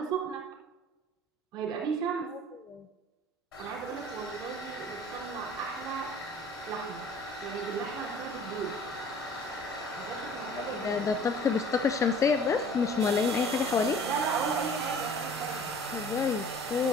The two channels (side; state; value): both; normal; correlation 0.48